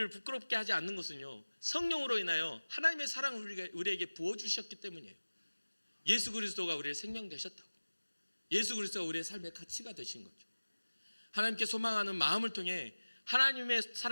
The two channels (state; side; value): inverted; both; correlation -1.00